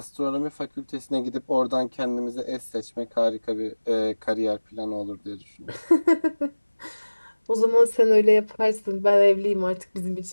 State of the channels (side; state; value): both; inverted; correlation -1.00